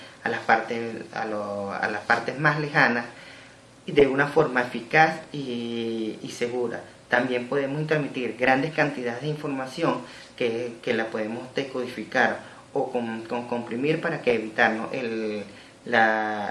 las partes más lejanas, y de una forma eficaz y segura. También podemos transmitir grandes cantidades de información que la podemos decodificar o comprimir para que evitarnos el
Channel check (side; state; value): both; identical; correlation 1.00